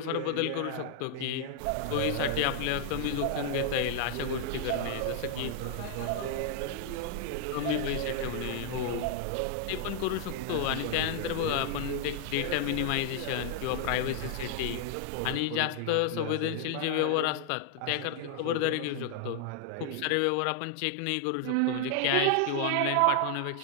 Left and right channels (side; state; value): both; different; correlation 0.00